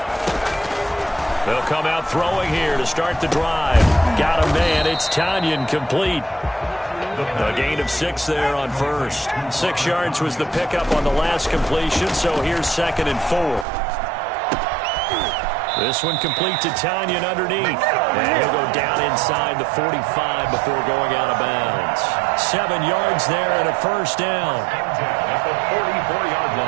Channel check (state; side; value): drops out; left; at 13.7 s